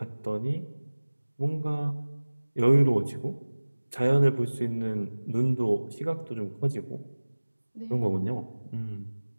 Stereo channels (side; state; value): both; inverted; correlation -1.00